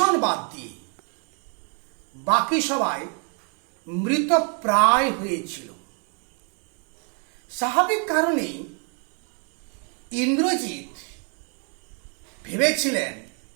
বাদ দিয়ে বাকি সবাই মৃতপ্রায় হয়েছিল। স্বাভাবিক কারণে ইন্দ্রজিৎ ভেবেছিলেন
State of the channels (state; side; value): quieter; left; 38.4 dB